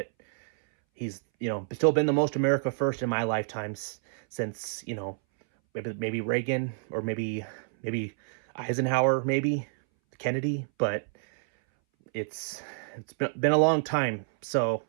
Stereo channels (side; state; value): left; silent; 59 dB below the other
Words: he's, still been the most America first in my lifetimes since, maybe Reagan, or maybe Eisenhower, maybe Kennedy, but it's been a long time. So